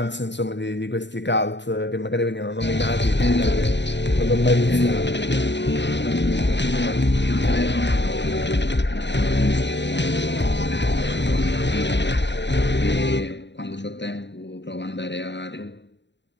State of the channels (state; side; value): late; right; 0.52 ms